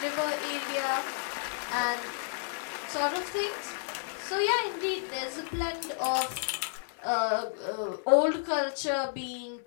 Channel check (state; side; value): silent; right; 57 dB below the other